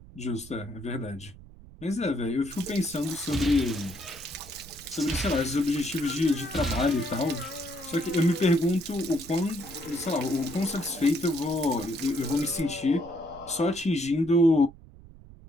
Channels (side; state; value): right; noise; rumble, 19 dB below the sound